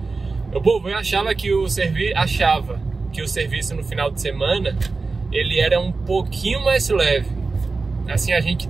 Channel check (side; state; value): left; quieter; 4.0 dB